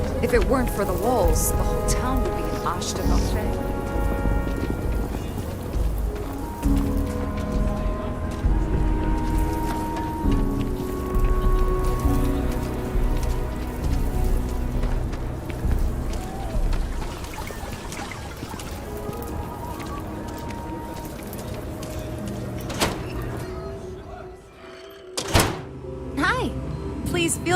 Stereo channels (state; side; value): identical; both; correlation 1.00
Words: If it weren't for the walls, the whole town would be an Ashta buffet. Hi. Please